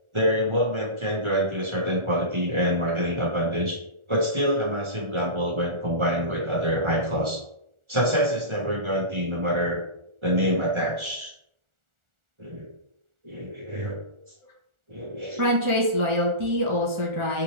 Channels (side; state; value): left; late; 1.4 ms